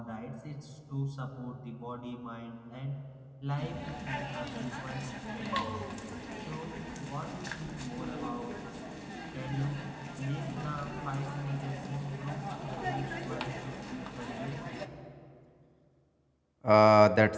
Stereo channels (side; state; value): both; identical; correlation 1.00